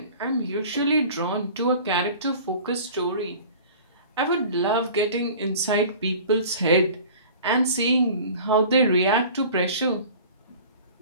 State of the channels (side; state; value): both; inverted; correlation -0.43